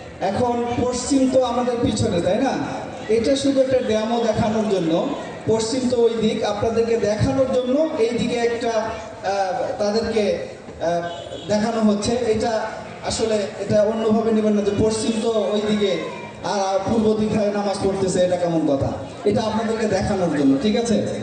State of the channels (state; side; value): identical; both; correlation 1.00